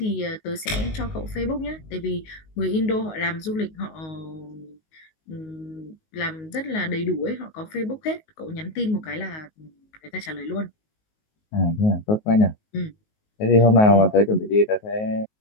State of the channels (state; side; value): late; right; 19 ms